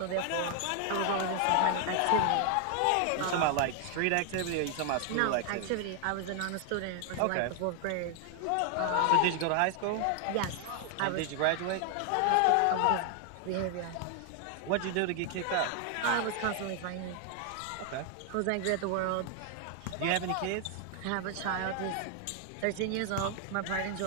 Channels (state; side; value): different; both; correlation 0.00